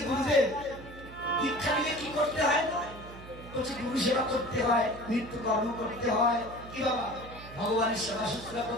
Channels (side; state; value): right; noise; hum, 16 dB below the sound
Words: গুরুদেব দীক্ষা নিলে কি করতে হয়? বলছে গুরু সেবা করতে হয়, নিত্য কর্ম করতে হয়। কি বাবা ভগবানের সেবা শুশ্রূষা